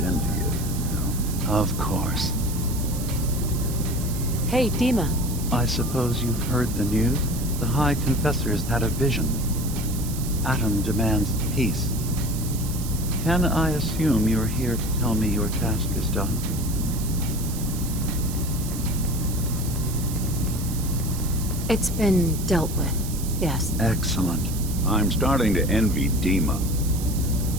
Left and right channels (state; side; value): noise; right; hiss, 10 dB below the sound